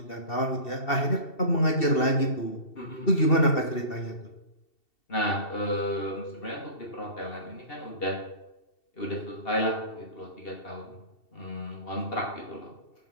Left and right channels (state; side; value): late; right; 2.7 ms